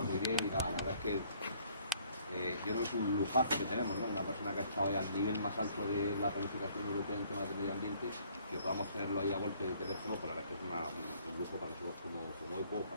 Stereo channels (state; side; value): inverted; both; correlation -0.61